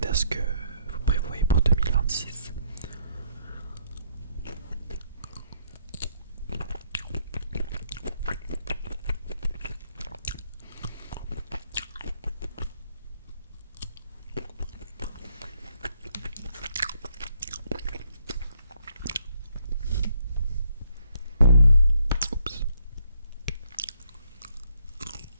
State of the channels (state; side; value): inverted; both; correlation -0.71